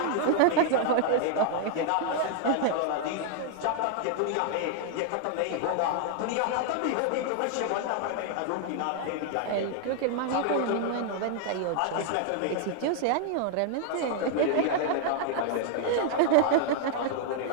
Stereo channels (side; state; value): both; different; correlation 0.00